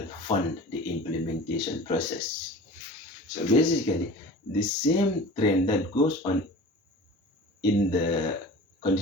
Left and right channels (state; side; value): normal; both; correlation 0.38